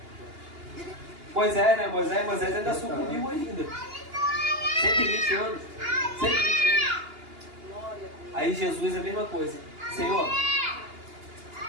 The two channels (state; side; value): late; left; 2.8 ms